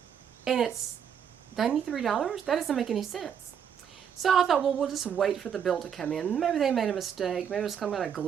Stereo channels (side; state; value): left; quieter; 8.1 dB